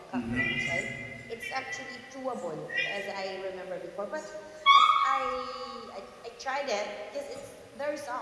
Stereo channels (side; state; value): both; identical; correlation 1.00